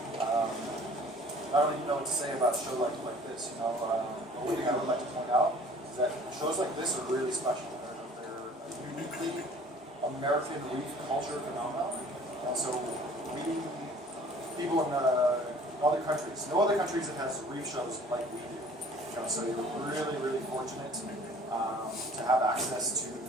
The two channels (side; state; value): both; normal; correlation 0.51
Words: I don't even know what to say about a show like this. The one thing I would like to point out is that shows like this are really special. They're uniquely American reef culture phenomenon, and so people in other countries, no other countries that has reef shows like we do. So you're really, really fortunate to have access to